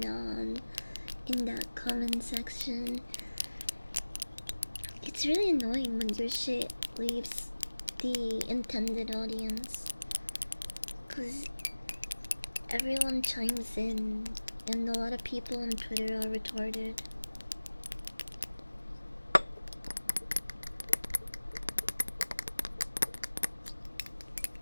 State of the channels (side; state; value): both; inverted; correlation -1.00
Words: on in that comment section? It's really annoying when your shit leaves the intended audience, cause everyone chimes in and a lot of people on Twitter are retarded.